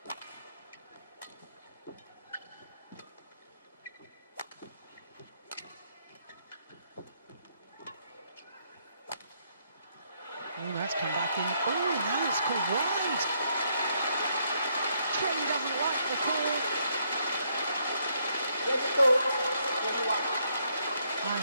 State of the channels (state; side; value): inverted; both; correlation -0.73